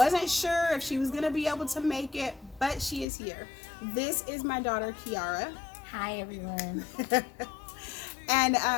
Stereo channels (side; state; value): right; drops out; at 3.1 s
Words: sure if she was going to be able to make it, but she is here. This is my daughter, Kiara. Hi, everyone. And